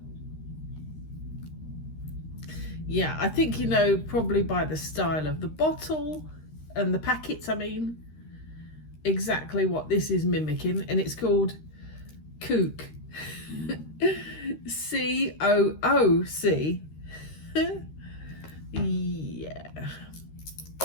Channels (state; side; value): late; right; 13 ms